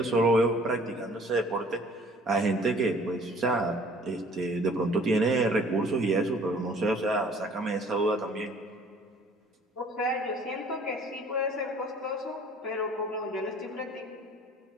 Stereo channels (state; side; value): normal; both; correlation 0.53